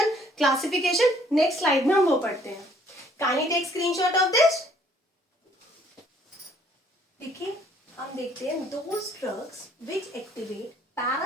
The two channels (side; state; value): both; normal; correlation 0.62